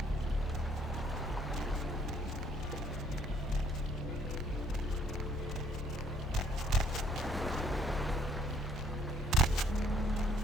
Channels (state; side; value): normal; both; correlation 0.64